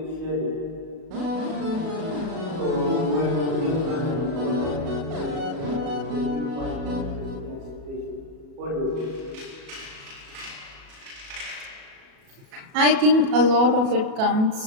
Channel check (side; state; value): left; late; 37 ms